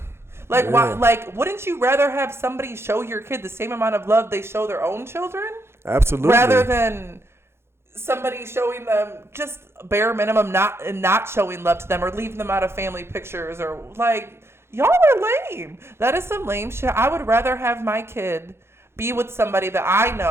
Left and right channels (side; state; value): left; late; 0.12 ms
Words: Why? Wouldn't you rather have somebody show your kid the same amount of love they show their own children? Absolutely. Rather than somebody showing them just bare minimum, not showing love to them or leaving them out of family pictures or y'all are lame. That is some lame shit. I would rather have my kid be with somebody that I